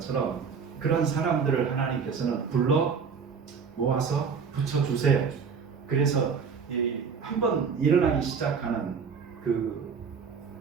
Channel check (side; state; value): left; quieter; 6.0 dB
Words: 그런 사람들을 하나님께서는 불러 모아서 붙여주세요. 그래서 한번 일어나기 시작하는 그